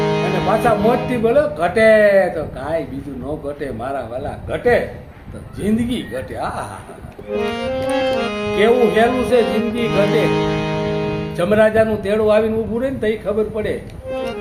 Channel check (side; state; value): both; identical; correlation 1.00